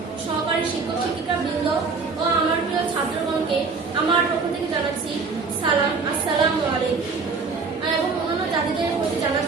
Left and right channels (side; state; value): left; quieter; 4.7 dB